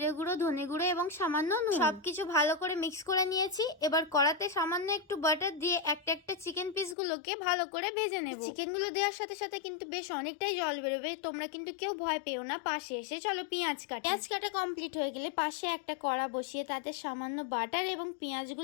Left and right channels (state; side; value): drops out; right; at 7.0 s